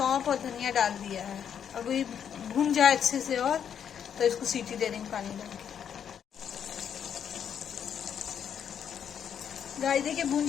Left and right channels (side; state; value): right; quieter; 8.3 dB